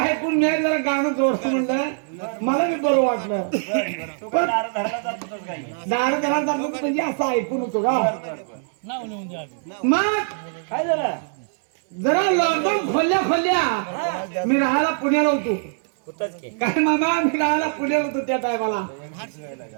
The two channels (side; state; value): left; silent; digital silence